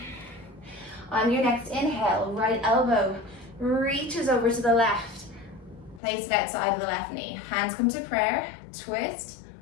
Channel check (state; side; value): drops out; right; at 6.0 s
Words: On your next inhale, right elbow reaches over to the left. Place it outside of the left knee. Hands come to prayer, twist.